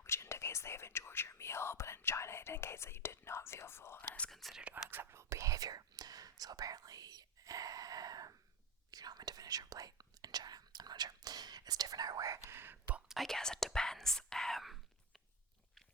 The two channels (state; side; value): normal; both; correlation 0.16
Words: which indicates they have enjoyed your meal, but in China it indicates that you did not feel full and is considered unacceptable behavior. So apparently, you're not meant to finish your plate in China. I'm not sure. It's different everywhere, but I guess it depends.